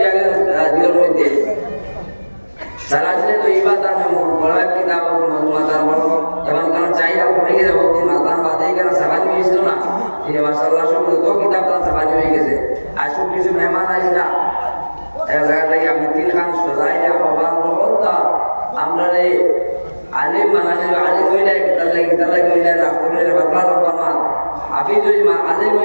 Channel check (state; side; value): inverted; both; correlation -1.00